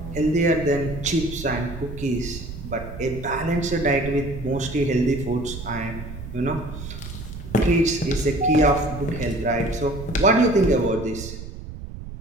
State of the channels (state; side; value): noise; right; rumble, 10 dB below the sound